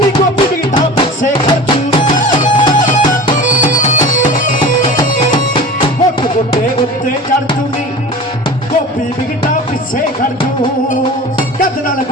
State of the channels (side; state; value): both; normal; correlation 0.36